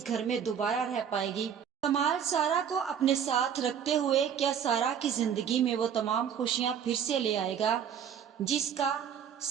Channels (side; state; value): left; quieter; 8.3 dB